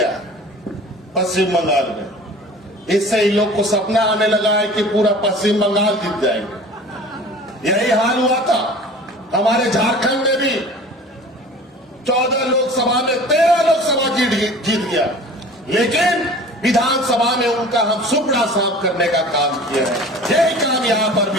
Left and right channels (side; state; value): both; normal; correlation 0.43